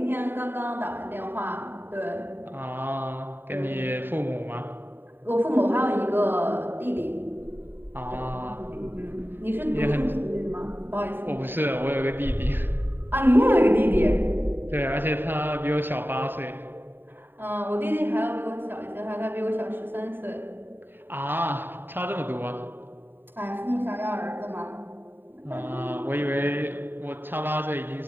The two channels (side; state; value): left; late; 0.096 ms